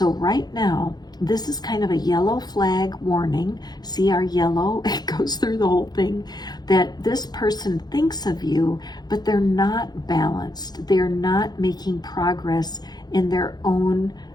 right now, this is kind of a yellow flag warning. See our yellow? It goes through the whole thing, that this person thinks of you, but they're not balanced. They're not making progress in their own,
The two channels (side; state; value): right; late; 0.20 ms